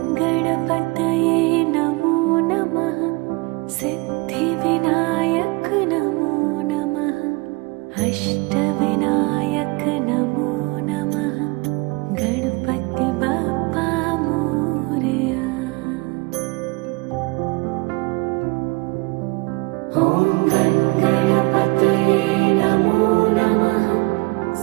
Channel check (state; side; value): quieter; left; 26.5 dB